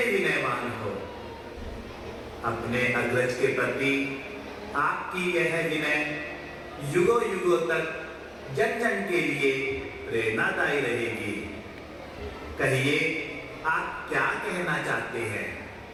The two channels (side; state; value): both; identical; correlation 1.00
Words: विनयवान हो। अपने अग्रज के प्रति आपकी यह विनय युगों युगों तक जन जन के लिए प्रेरणादायी रहेगी। कहिए, आप क्या कहना चाहते हैं?